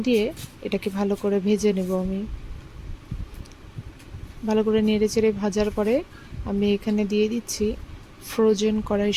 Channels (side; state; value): both; identical; correlation 1.00